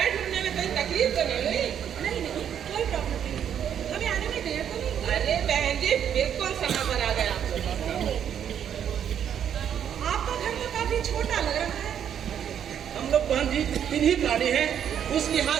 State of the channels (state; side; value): quieter; left; 9.0 dB